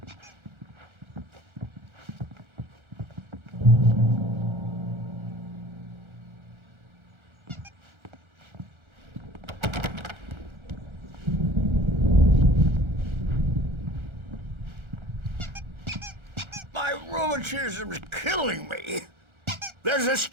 My rheumatism's killing me. There's a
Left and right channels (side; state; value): left; late; 1.4 ms